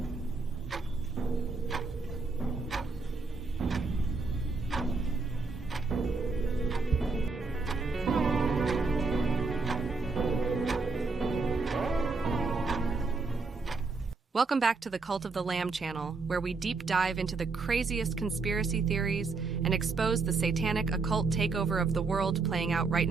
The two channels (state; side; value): quieter; left; 4.1 dB